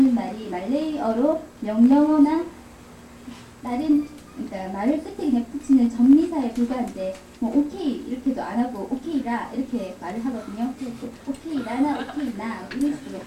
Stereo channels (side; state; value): both; identical; correlation 1.00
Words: 말이 말레이어로 명령어나 다른 그러니까 말을 끝에 그냥 붙이는 정리사에 불과한데 뭐 오케이 이렇게도 안 하고 오케이라 이렇게 말을 하거든요. 그래서 오케이라나 오케이나 이런 식으로.